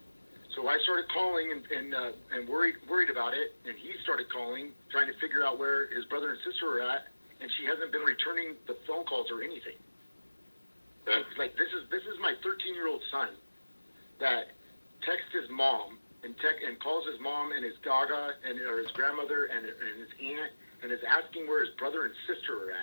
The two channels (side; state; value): both; inverted; correlation -1.00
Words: So I started calling and worried about it, and he started calling, trying to figure out where his brother and sister are at, and she hasn't been returning the phone calls or anything. Okay. Like this is my 13-year-old son that texts his mom and calls his mom and his gaga or his grandmother and his aunt and is asking where his brother and sister are